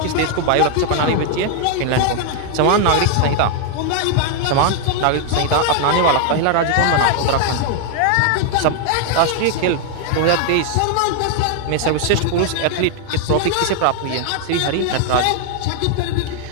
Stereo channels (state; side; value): different; both; correlation 0.00